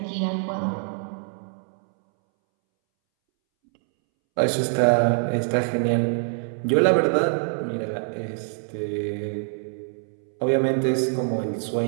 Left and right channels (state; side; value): silent; left; 62 dB below the other